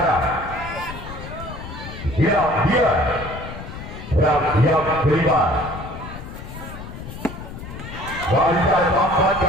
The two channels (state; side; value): noise; left; rumble, 11 dB below the sound